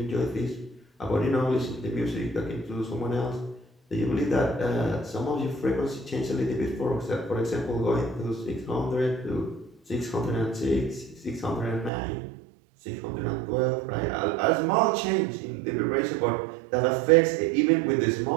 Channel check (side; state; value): left; drops out; at 11.9 s